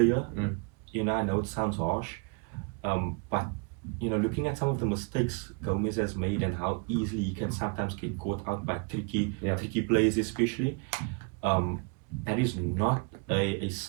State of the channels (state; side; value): quieter; left; 34.9 dB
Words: I know it sounds harsh, but looking at some of the mistakes Gomez has made and how easily he can sometimes get caught out by tricky players, especially, that is not a